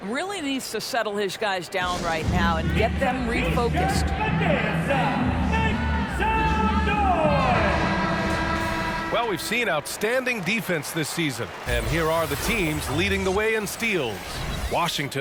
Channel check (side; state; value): both; identical; correlation 1.00